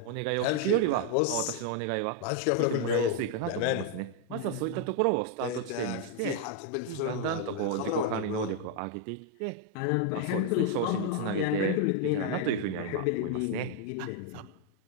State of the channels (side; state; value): both; different; correlation 0.00